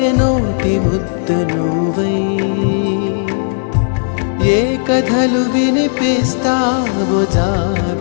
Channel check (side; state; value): right; silent; digital silence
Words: నోటి ముద్ద నువ్వై ఏ కథలు వినిపిస్తావో